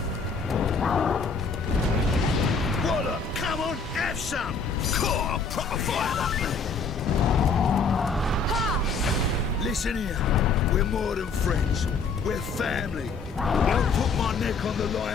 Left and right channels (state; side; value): quieter; right; 4.7 dB